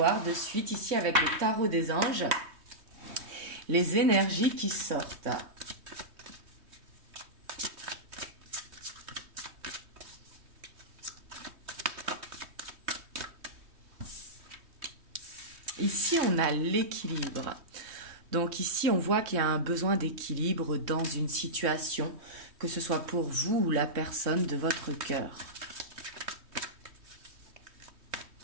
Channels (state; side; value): late; left; 3.2 ms